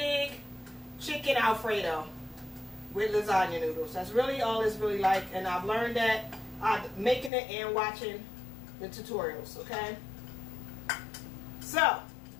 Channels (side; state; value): right; drops out; at 7.3 s